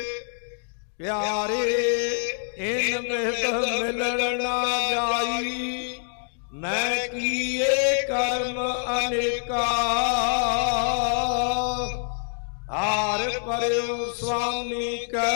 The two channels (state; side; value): silent; right; digital silence